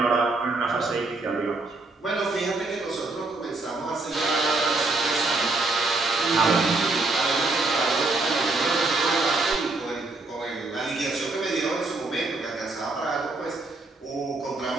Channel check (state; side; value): quieter; left; 3.3 dB